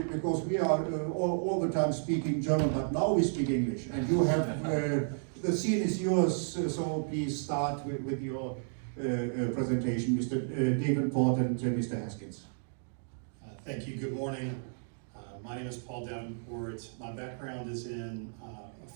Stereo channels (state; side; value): silent; left; digital silence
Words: we are all the time speaking German, but now we speak English, and you have the scene is yours. So please start with your presentation, Mr. Davenport and Mr. Haskins. Thank you. Good morning. My name is Paul Davenport. My background is in